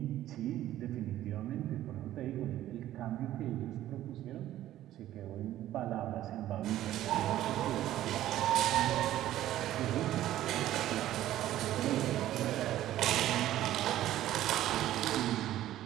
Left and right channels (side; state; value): left; quieter; 13.4 dB